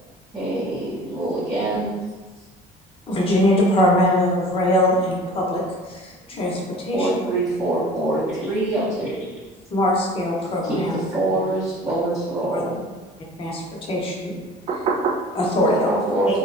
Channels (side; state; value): both; normal; correlation 0.45